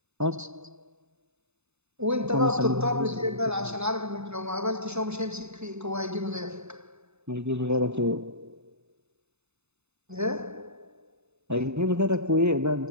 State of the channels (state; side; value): late; left; 0.81 ms